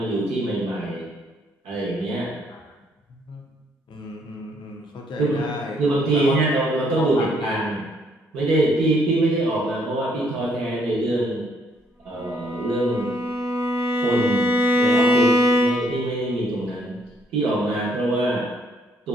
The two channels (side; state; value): both; normal; correlation 0.68